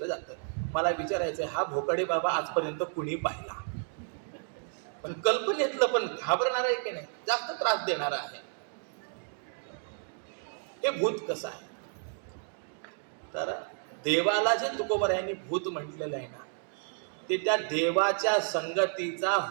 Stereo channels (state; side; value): silent; left; 57 dB below the other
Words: जातं. मला विचारायचं, हा भोकाडी बाबा आजपर्यंत कुणी पाहिला? पण कल्पनेतलं पण घाबरणार आहे की नाही, जास्त त्रास देणार आहे. हे भूत कसं आहे? तर देवाला जे तुकोबरायांनी भूत म्हटलेलं आहे ना, ते त्या देवाच्या संगतीचा